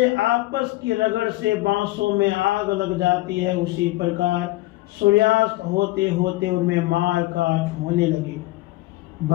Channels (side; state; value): right; quieter; 18.9 dB